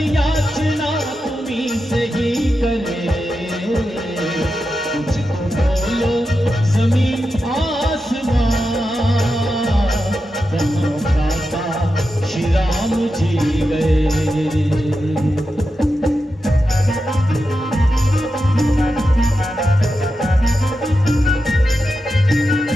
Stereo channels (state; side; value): normal; both; correlation 0.89